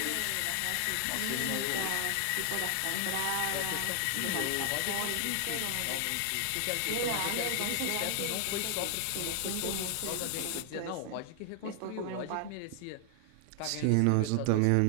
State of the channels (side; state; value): both; different; correlation 0.00